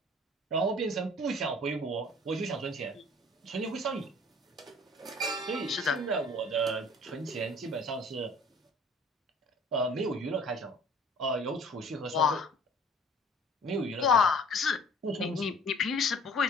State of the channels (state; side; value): normal; both; correlation 0.50